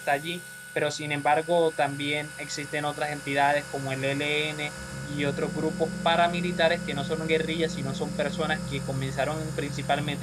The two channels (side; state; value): both; identical; correlation 1.00